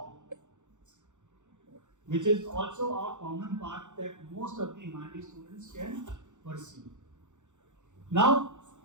which is also a common path that most of the humanities students can pursue. Now,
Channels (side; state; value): left; late; 0.85 ms